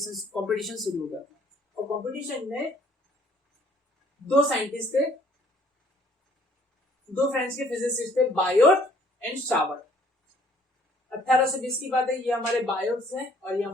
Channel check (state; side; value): normal; both; correlation 0.60